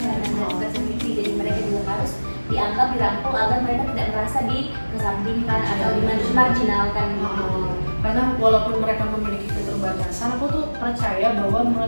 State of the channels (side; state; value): both; inverted; correlation -1.00